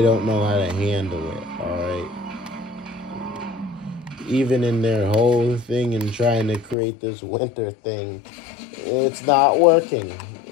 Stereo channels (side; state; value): right; drops out; at 6.8 s